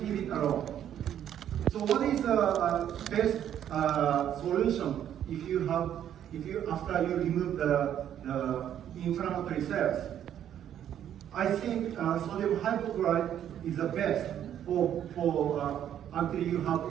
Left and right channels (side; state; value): left; quieter; 10.3 dB